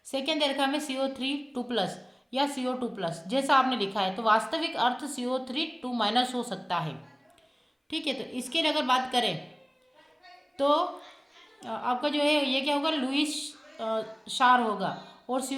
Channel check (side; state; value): both; identical; correlation 1.00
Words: सेकेंड दे रखा है हमें CO3 2+ या CO2+, जैसा आपने लिखा है। तो वास्तविक अर्थ CO3 2- हो सकता है। ठीक है, तो इसके लिए अगर बात करें तो आपका जो है ये क्या होगा, लुईस क्षार होगा। और